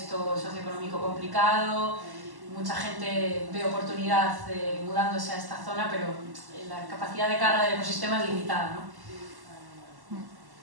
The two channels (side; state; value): left; late; 1.1 ms